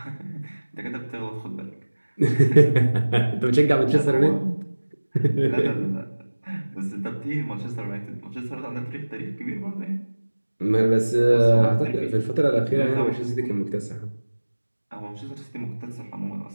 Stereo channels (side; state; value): both; inverted; correlation -1.00